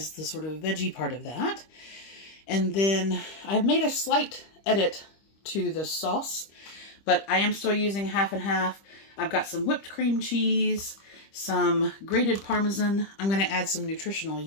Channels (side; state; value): right; late; 25 ms